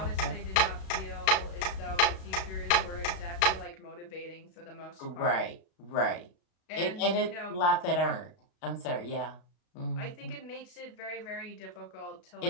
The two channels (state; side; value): late; right; 35 ms